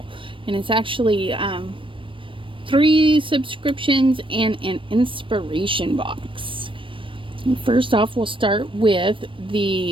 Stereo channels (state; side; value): late; left; 0.25 ms